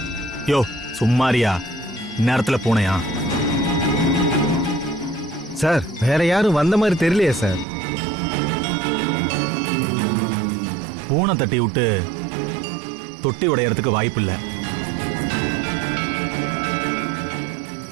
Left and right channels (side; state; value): left; drops out; at 7.7 s